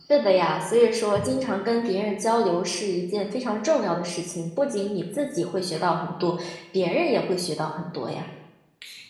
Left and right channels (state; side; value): identical; both; correlation 1.00